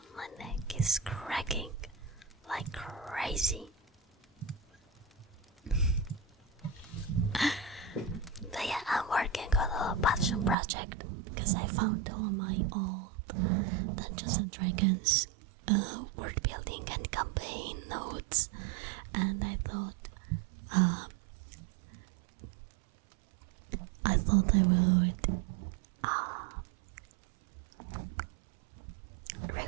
My neck is cracking like crazy. But yeah, I'm working on a passion project because I found all my old Dungeons and Dragons word building and campaign notes, and I thought I would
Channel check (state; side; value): drops out; left; at 10.6 s